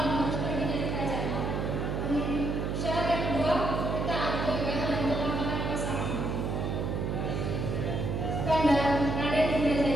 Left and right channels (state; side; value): noise; right; hum, 1 dB below the sound